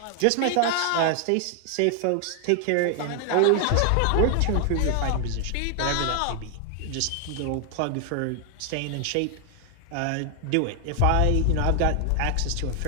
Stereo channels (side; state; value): both; different; correlation 0.00